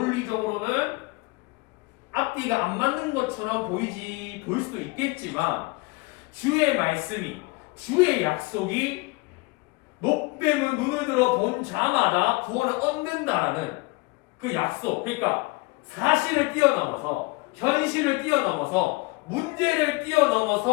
앞뒤가 안 맞는 것처럼 보일 수도 있겠지만 주의 말씀이 주의 약속이 노뱀을 눈을 들어 본 자마다 구원을 얻는다라는 그 약속, 그러니까 사실을 뛰어넘어서 현실을 뛰어넘어서 문제를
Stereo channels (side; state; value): right; quieter; 25.6 dB